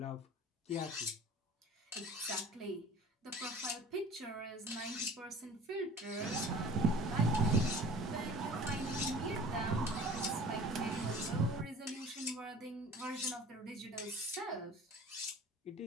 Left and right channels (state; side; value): normal; both; correlation 0.45